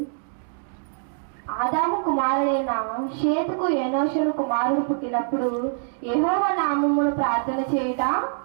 ఆదాము కుమారుడైన షేతుకు ఏనోషును కుమారుడు పుట్టినప్పుడు యెహోవా నామమున ప్రార్థన చేయుట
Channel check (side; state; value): left; silent; digital silence